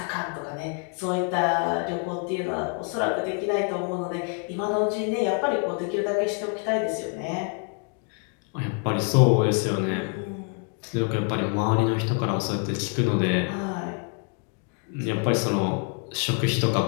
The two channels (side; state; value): right; quieter; 39.2 dB